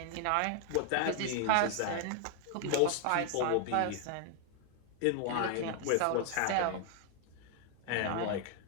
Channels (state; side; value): different; both; correlation 0.00